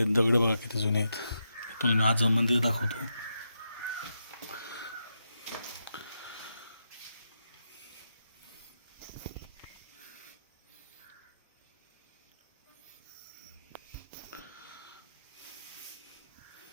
दगड बघा किती जुने आहेत. तुम्हाला मी आज मंदिर दाखवतो.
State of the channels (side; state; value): both; inverted; correlation -0.85